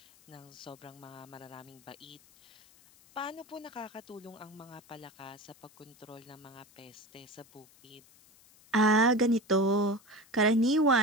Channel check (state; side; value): noise; left; hiss, 27 dB below the sound